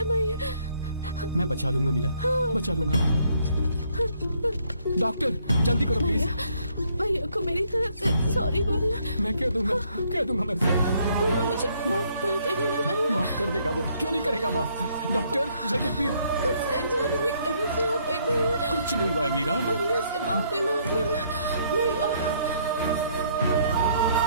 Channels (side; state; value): both; inverted; correlation -0.68